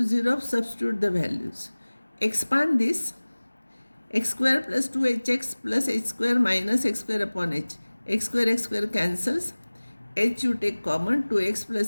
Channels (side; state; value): both; inverted; correlation -1.00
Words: 0 of substitute the values. Expand this. X square plus 2hx plus h square minus x square upon h. X square cancels. H you take common. 2x